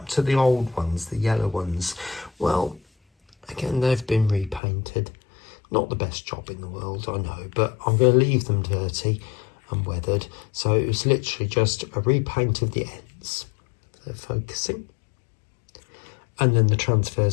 to the old ones, the yellow ones? Well, again, they've been repainted. Not the best job in the world, I know, but I'm going to leave them dirty and weathered. So it was literally just a repaint of the ends. They're focusing. And then the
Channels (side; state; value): right; drops out; at 4.6 s